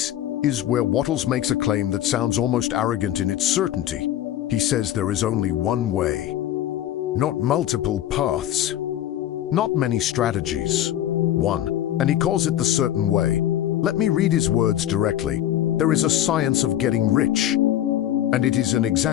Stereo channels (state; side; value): quieter; right; 12.2 dB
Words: is where Wattles makes a claim that sounds almost arrogant in its certainty. He says there is only one way, not multiple paths, not many strategies, one, and he calls it the certain way. Let me read his words directly. There is a science of getting rich, and it is an